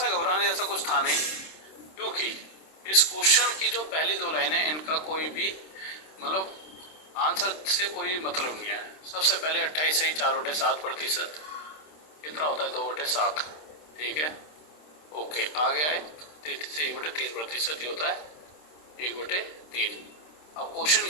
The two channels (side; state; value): right; late; 26 ms